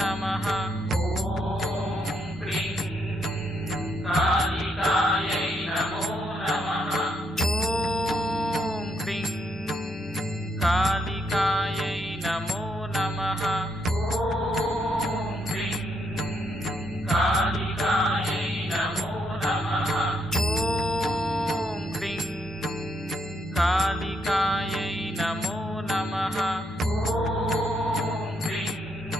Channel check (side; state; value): both; normal; correlation 0.76